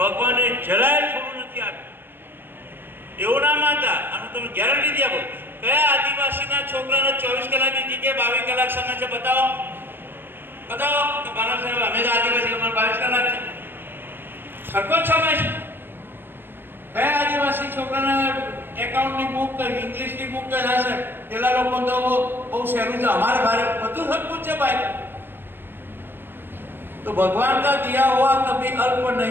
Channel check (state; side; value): late; left; 0.098 ms